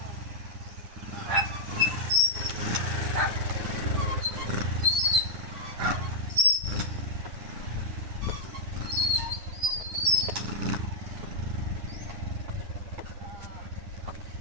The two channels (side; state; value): left; late; 9.9 ms